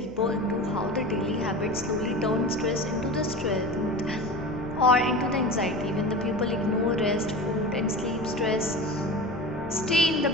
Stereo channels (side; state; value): left; noise; hum, 18 dB below the sound